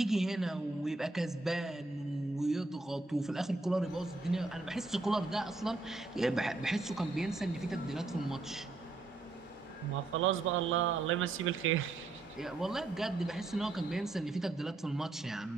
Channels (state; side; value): quieter; left; 3.3 dB